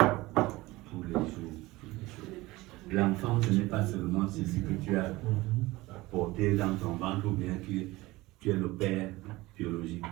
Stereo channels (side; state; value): left; quieter; 19.9 dB